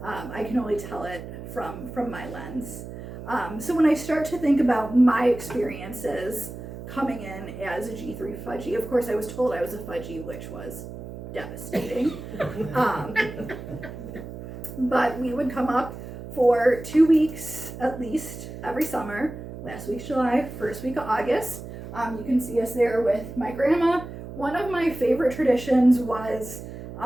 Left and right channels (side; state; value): right; noise; hum, 11 dB below the sound